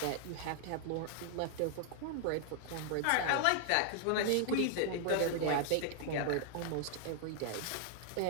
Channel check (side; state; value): both; different; correlation -0.01